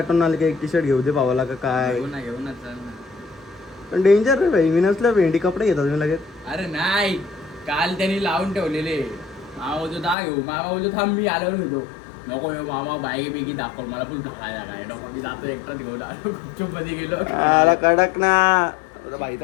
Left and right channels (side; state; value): right; drops out; at 10.2 s